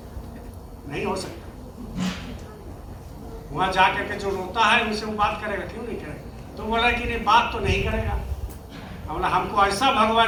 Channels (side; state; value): both; identical; correlation 1.00